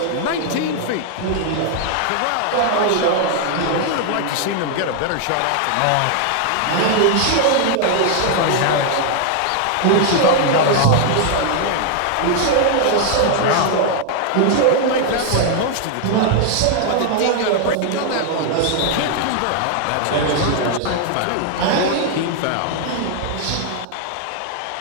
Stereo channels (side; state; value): both; different; correlation 0.00